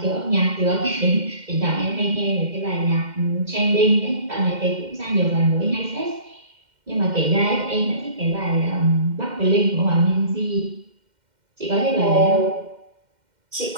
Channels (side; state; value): left; late; 2.1 ms